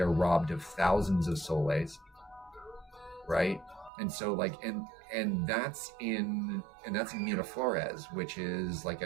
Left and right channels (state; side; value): drops out; left; at 3.9 s